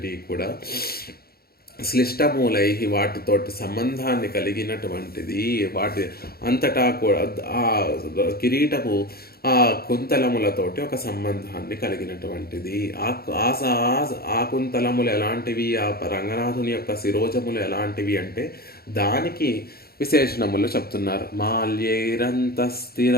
కూడా శ్లిష్టమూలై, వాటితోటి సంబంధాన్ని కలిగినటువంటిది. వాటి అంతటా కూడా ఆ కిరీటము ఆ కుంతలములతోటి ఒక సంబంధాన్ని కలిగినటువంటిది. ఆ కుంతలములు ఎలాంటివి, ఆ రంగనాథుని యొక్క శిరోజములు ఎలాంటివి అంటే దానికి విశేషణములు చెప్తున్నారు. మాల్యైరంతస్థిర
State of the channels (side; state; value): right; late; 0.45 ms